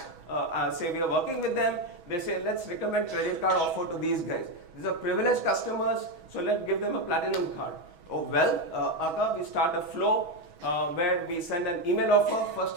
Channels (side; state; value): left; late; 6.2 ms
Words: say we are working with them, they say, let's recommend credit card offer to these guys. These are privileged customers, so let's give them a platinum card. Oh well, we start a flow where we send an email offer, first